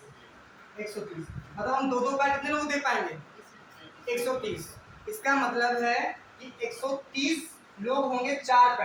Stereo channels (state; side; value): identical; both; correlation 1.00